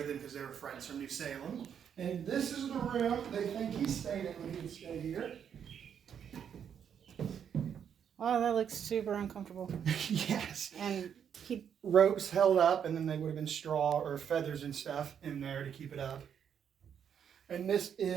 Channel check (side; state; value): left; quieter; 8.2 dB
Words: them because they were friends from New Salem. And this is the room they think he stayed in when he would stay here. Oh, that looks super uncomfortable. Yes. And ropes held up, and then they would have been straw or feathers and stuff in there to keep it up. And this